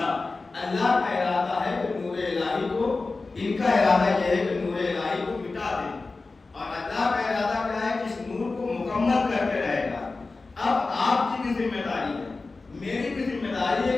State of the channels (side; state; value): right; quieter; 3.7 dB